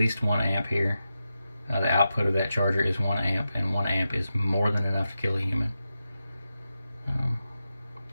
1 amp here. The output of that charger is 1 amp, and 1 amp is more than enough to kill a human.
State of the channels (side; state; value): both; inverted; correlation -0.90